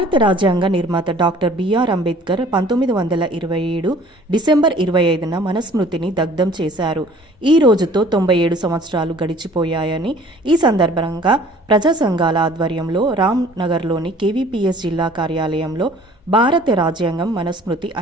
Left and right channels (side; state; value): both; normal; correlation 0.52